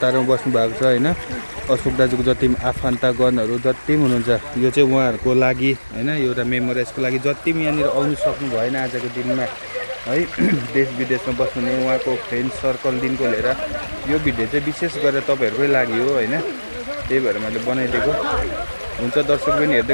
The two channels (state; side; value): inverted; both; correlation -1.00